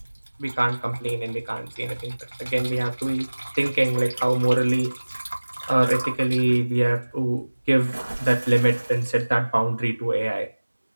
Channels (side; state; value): both; inverted; correlation -1.00